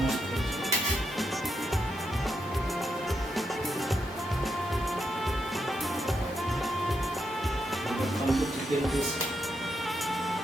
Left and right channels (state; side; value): normal; both; correlation 0.82